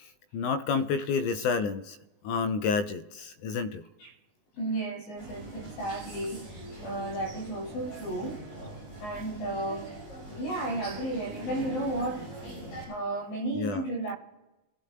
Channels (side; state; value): right; late; 20 ms